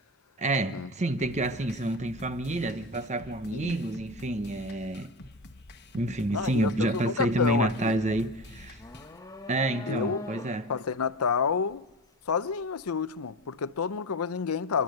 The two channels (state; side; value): normal; both; correlation 0.26